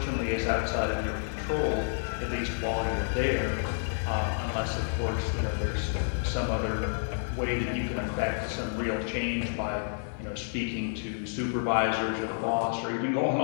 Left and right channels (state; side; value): silent; right; 58 dB below the other